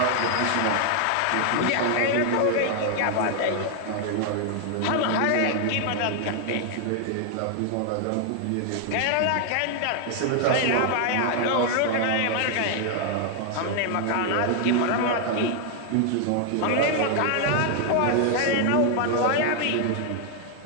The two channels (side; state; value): both; different; correlation 0.00